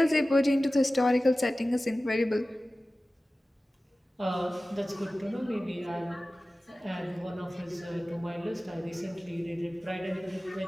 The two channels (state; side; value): normal; both; correlation 0.96